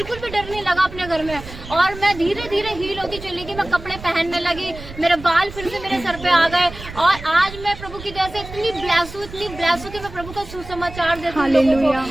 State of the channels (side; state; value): right; noise; rumble, 14 dB below the sound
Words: भी डर नहीं लगा अपने घर में। और मैं धीरे धीरे हील होती चली गई, मैं कपड़े पहनने लगी, मेरे बाल फिर से मेरे सर पे आ गए और आज मैं प्रभु की दया से इतनी ब्लेस हूँ कि मैं प्रभु का सुसमाचार देती हूँ।